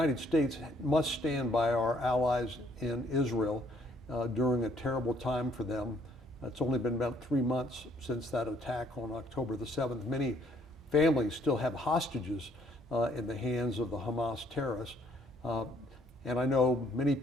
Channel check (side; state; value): both; normal; correlation 0.65